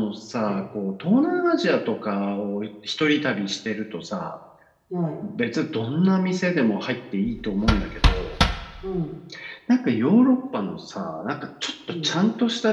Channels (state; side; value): identical; both; correlation 1.00